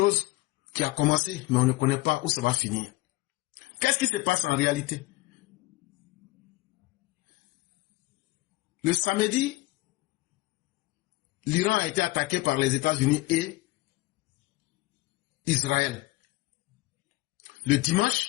qui a commencé, mais on ne connaît pas où ça va finir. Qu'est-ce qui se passe en réalité? Le samedi, l'Iran a été attaqué par les États-Unis et Israël. Le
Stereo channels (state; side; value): quieter; right; 20.8 dB